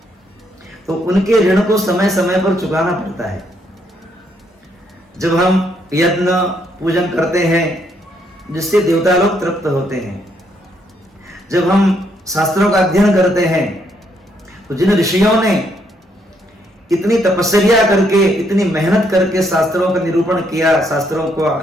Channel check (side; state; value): both; normal; correlation 0.73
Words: तो उनके ऋण को समय समय पर चुकाना पड़ता है। जब हम यज्ञ पूजन करते हैं जिससे देवता लोग तृप्त होते हैं, जब हम शास्त्रों का अध्ययन करते हैं, तो जिन ऋषियों ने इतनी तपस्या करके, इतनी मेहनत करके शास्त्रों का निरूपण किया, शास्त्रों